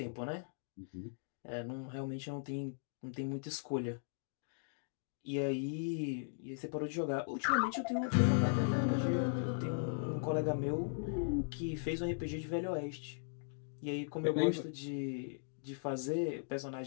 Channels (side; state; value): right; silent; digital silence